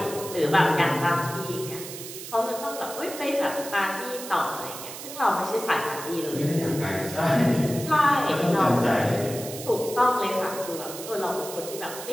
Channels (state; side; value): noise; right; hiss, 11 dB below the sound